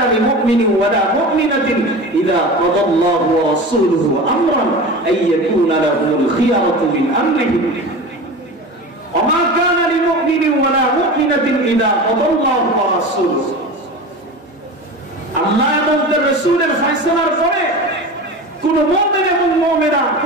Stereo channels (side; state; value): both; normal; correlation 0.31